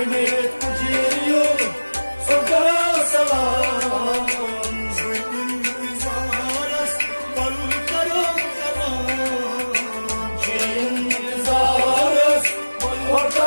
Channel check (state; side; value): inverted; both; correlation -1.00